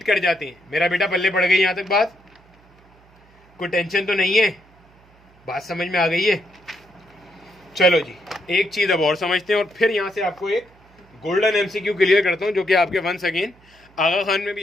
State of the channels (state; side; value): noise; right; hum, 29 dB below the sound